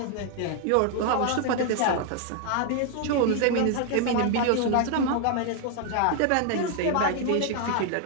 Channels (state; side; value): different; both; correlation 0.00